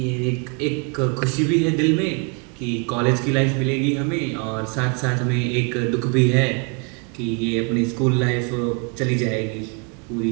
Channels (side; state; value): left; quieter; 34.9 dB